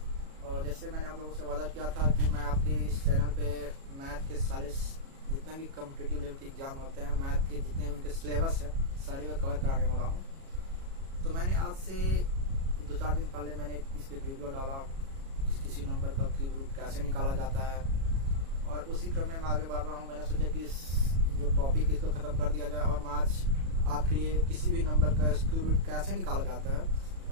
और जैसे मैंने आप लोगों से वादा किया था कि मैं आपके इस चैनल पे मैथ के सारे जितने भी कॉम्पिटिटिव लेवल के एग्जाम होते हैं, मैथ के जितने उनके सिलेबस है सारे को कवर कराने वाला हूँ। तो मैंने आज से 2-4 दिन पहले मैंने इसके वीडियो डाला किसी नंबर का क्यूब रूट कैसे निकाला जाता है, और उसी क्रम में मैं आगे बढ़ रहा हूँ। मैंने सोचा कि इस जो टॉपिक इसको ख़त्म कर दिया जाए और मैं आज आपके लिए किसी भी नंबर का क्यूब रूट कैसे निकाला जाता है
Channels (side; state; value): left; late; 37 ms